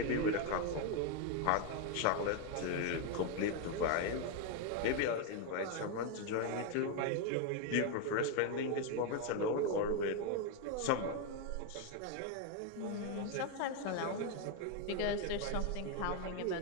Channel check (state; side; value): different; both; correlation 0.01